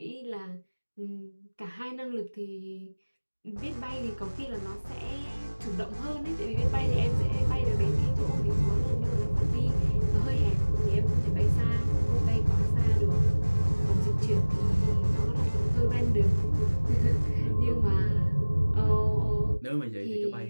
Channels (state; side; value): inverted; both; correlation -1.00